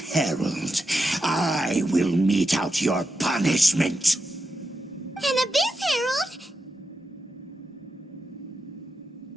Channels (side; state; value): both; normal; correlation 0.87